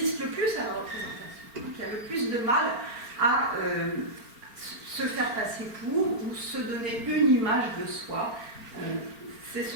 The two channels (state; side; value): late; left; 4.4 ms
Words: le plus à la représentation, qui a le plus de mal à se faire passer pour, ou se donner une image de soi. C'est ce